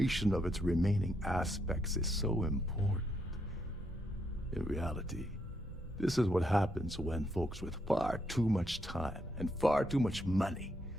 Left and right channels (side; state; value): right; noise; hum, 20 dB below the sound